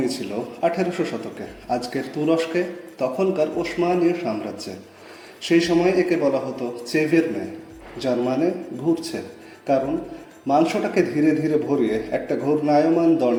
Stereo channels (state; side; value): identical; both; correlation 1.00